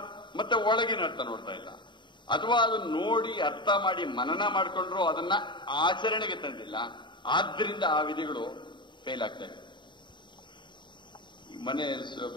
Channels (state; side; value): late; right; 0.23 ms